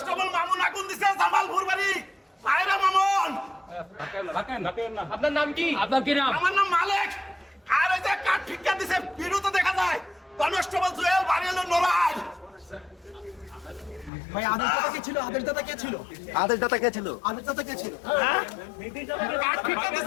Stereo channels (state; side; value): drops out; right; at 14.1 s